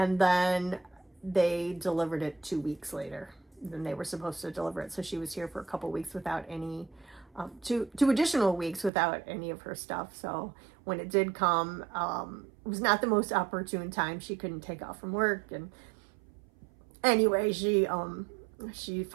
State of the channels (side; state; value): left; drops out; at 8.9 s